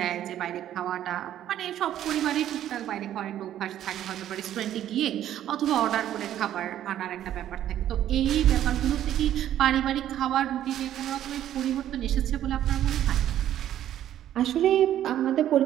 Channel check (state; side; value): quieter; left; 11.6 dB